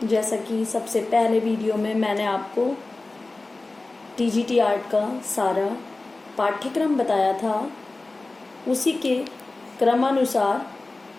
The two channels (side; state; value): right; quieter; 3.2 dB